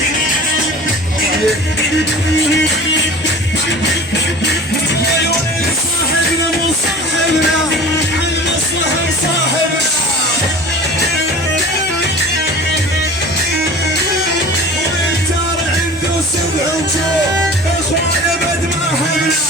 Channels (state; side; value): normal; both; correlation 0.40